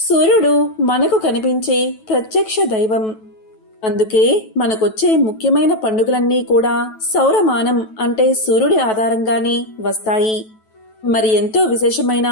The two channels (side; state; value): right; late; 9.2 ms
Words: మనకు కనిపించే ప్రత్యక్ష దైవం. అందుకే మనకొచ్చే ముఖ్యమైన పండుగలన్నీ కూడా సౌరమానం అంటే సూర్యుడి ఆధారంగానే వస్తాయి. మరి ఎంతో విశేషమైన